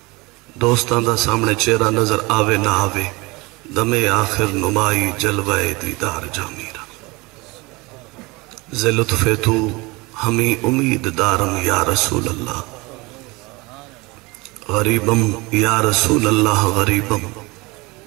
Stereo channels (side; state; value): left; quieter; 24.3 dB